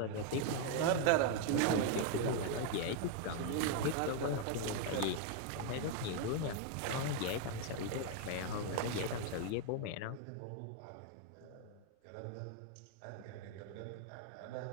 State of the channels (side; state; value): both; different; correlation 0.00